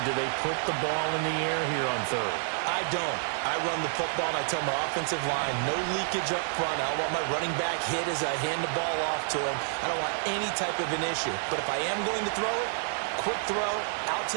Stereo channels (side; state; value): left; silent; digital silence